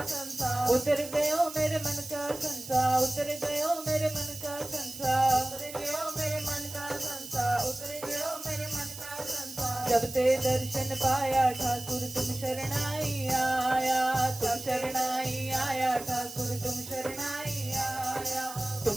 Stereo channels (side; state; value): right; noise; hiss, 12 dB below the sound